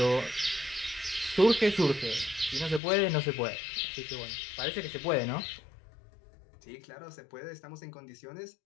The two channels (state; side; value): drops out; right; at 2.8 s